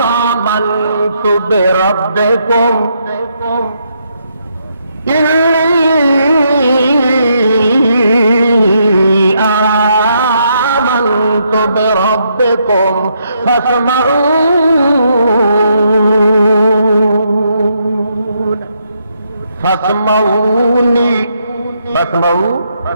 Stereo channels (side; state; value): both; inverted; correlation -0.76